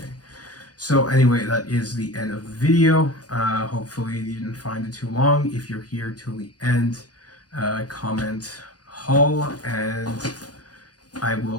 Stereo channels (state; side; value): late; right; 0.68 ms